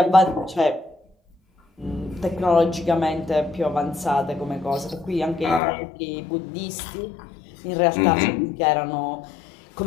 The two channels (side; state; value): right; drops out; at 5.6 s